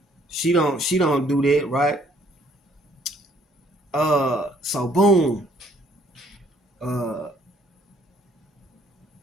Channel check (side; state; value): both; normal; correlation 0.63